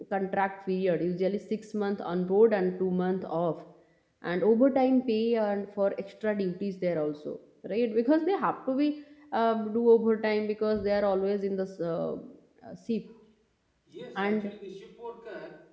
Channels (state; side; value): identical; both; correlation 1.00